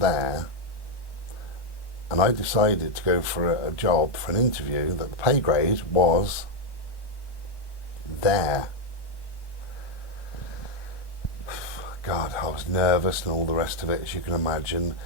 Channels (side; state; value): right; late; 1.2 ms